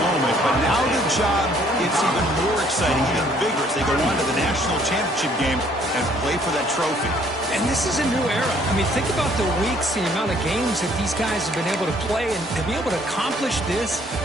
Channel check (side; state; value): both; normal; correlation 0.62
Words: moment, but now the job gets even more exciting, even bigger as they go on to the national championship game and play for that trophy. And this is a new era. I mean, think about the weeks, the amount of games that these guys have been able to play, and to be able to accomplish this,